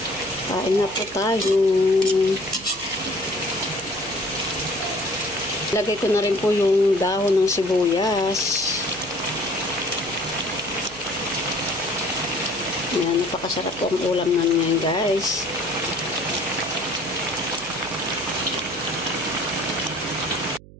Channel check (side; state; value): right; noise; hum, 20 dB below the sound